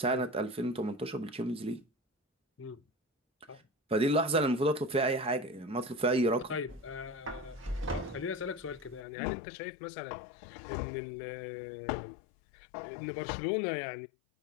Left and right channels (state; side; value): drops out; right; at 9.1 s